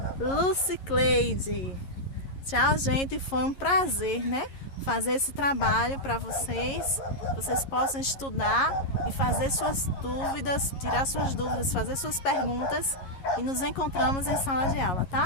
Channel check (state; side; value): late; right; 11 ms